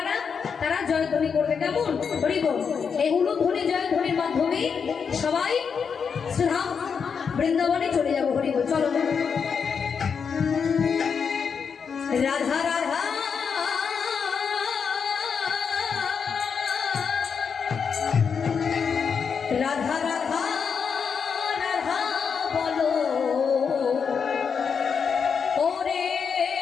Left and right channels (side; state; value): right; quieter; 6.3 dB